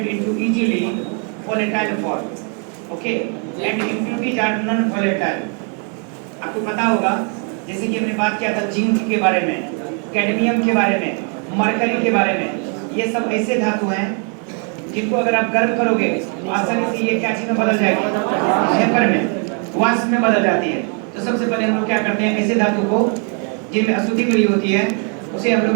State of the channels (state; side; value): quieter; left; 39.8 dB